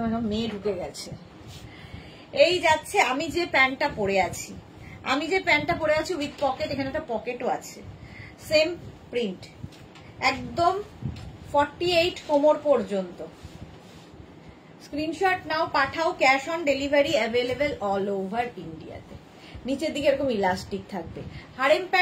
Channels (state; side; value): identical; both; correlation 1.00